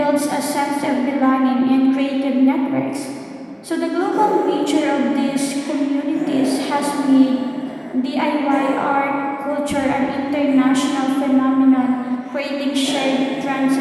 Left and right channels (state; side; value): identical; both; correlation 1.00